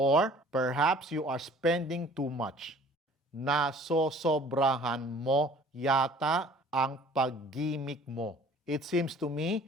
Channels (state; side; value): normal; both; correlation 0.51